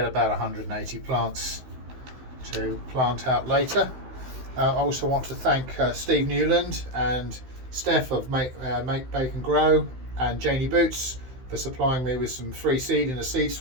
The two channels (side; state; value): left; late; 16 ms